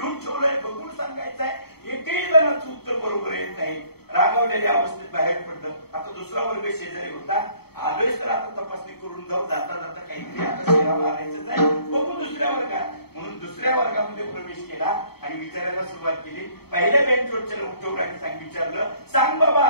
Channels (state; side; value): late; right; 0.96 ms